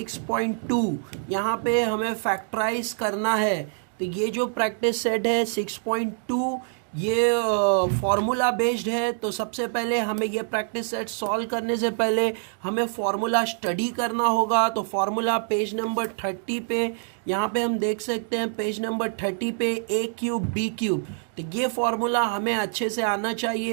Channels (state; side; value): silent; left; digital silence